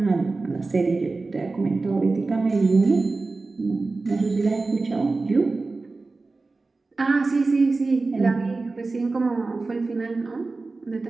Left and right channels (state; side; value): quieter; left; 3.6 dB